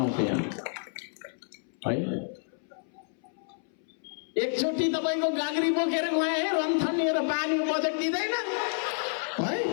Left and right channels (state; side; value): silent; right; 58 dB below the other